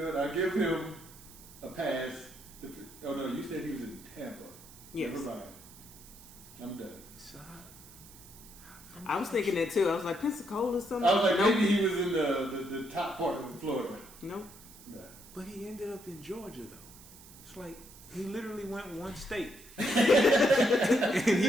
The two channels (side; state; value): right; noise; hiss, 20 dB below the sound